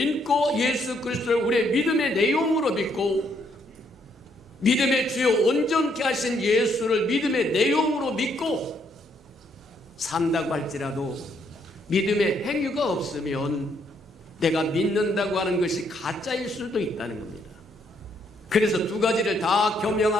예수 그리스도를 우리의 믿음의 내용으로 믿고 믿음의 주요 온전케 하신 예수를 믿음의 내용으로 믿고 산다고 할지라도 믿음의 행위가 없으면 내가 믿는다고 하는 것이 가짜일 수도 있다는 겁니다. 그래서 두 가지를 다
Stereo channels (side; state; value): both; normal; correlation 0.72